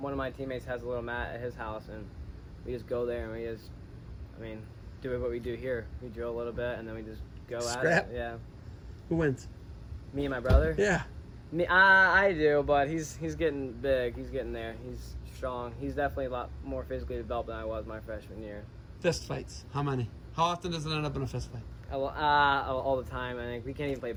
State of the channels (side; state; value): both; identical; correlation 1.00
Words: of my teammates has a little mat at his house, and we just go there and we just, I mean, do what we do here. We drill a little bit, and then we just go Scrap? at it. Yeah. Who wins? Me and my brother. Yeah. Me, I do, but he's getting big. He's getting there. He's strong. He's definitely a lot more physically developed than I was my freshman year. Fist fights. How many? How often does it end up in a fist fight? All the time. I think we can't even play